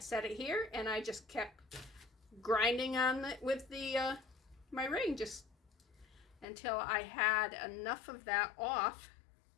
it here, and I just kept grinding on it with my ring just until I had enough of that off.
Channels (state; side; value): drops out; right; at 6.5 s